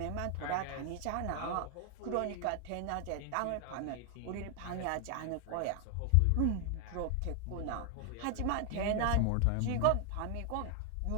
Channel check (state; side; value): different; both; correlation 0.00